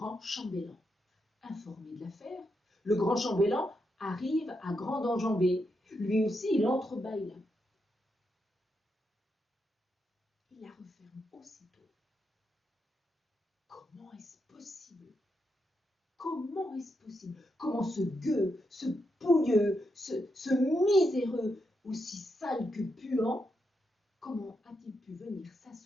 chambellan. Informé de l'affaire, le grand chambellan arrive à grande enjambée. Lui aussi, il entrebâille la porte. Il la referme aussitôt. Comment est-ce possible? Comment est-ce possible? Comment ce gueux, ce pouilleux, ce miséreux, aussi sale que puant, comment a-t-il pu venir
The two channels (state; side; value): normal; both; correlation 0.83